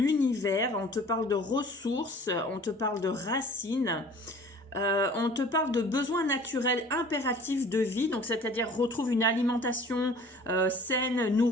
On te parle de ressources. On te parle de racines. On te parle de besoins naturels impératifs de vie, donc c'est-à-dire retrouve une alimentation saine,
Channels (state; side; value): normal; both; correlation 0.48